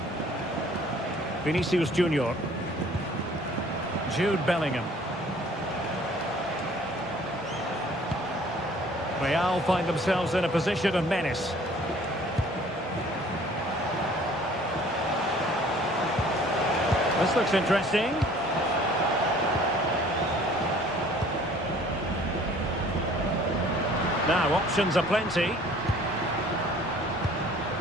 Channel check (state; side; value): normal; both; correlation 0.53